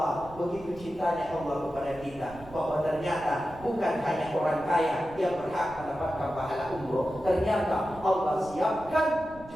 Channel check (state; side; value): noise; right; rumble, 18 dB below the sound